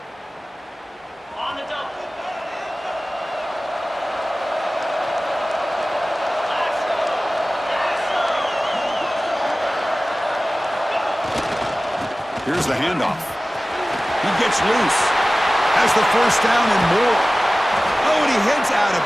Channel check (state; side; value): normal; both; correlation 0.97